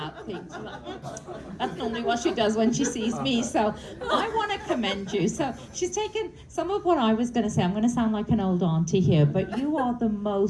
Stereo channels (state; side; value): identical; both; correlation 1.00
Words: things. That's normally what she does when she sees me, so I want to commend you. So she's taken some of what I was going to say. I'm going to sound like an old auntie here, but you are the